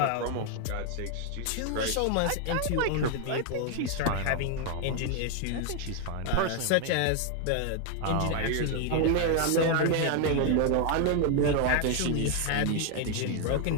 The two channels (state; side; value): different; both; correlation 0.01